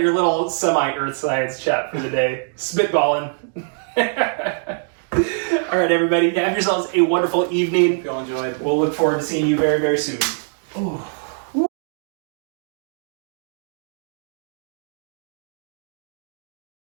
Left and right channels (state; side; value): silent; left; digital silence